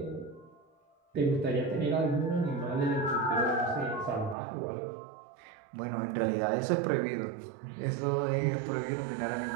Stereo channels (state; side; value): drops out; left; at 4.4 s